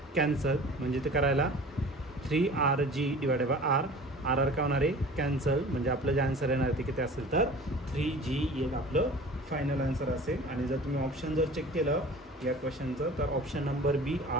कॅन्सल, म्हणजे ते करायला 3RG / r, RR का होणार आहे, कॅन्सल, म्हणजे आपलं जे आन्सर येणार ते किती असेल, तर 3G येईल आपलं फायनल आन्सर असेल। आणि जर तुम्ही ऑप्शन जर चेक केलं या क्वेश्चनचं, तर ऑप्शन नंबर बी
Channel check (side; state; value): both; normal; correlation 0.42